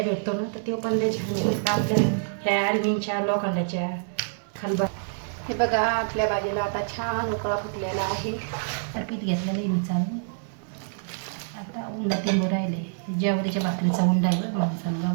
भेटतो ना तर ते पण त्याच्या आपल्या ह्या ॲल्युमिनच्या लोखंडाच्या खलबत्त्या. हे बघा आपल्या भाजीला आता छान उकळा फुटलेला आहे. पीठ घेतलेलं आहे मी चालू. आता उंडा ते राहिले. ज्वारीच्या भाकरीचा उंडा आहे माणसाला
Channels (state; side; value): silent; left; 61 dB below the other